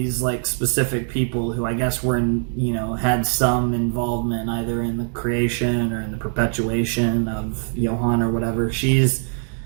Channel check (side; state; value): left; silent; 64 dB below the other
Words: like specific people who I guess were had some involvement either in the creation or in the perpetuation of Johann or whatever. She's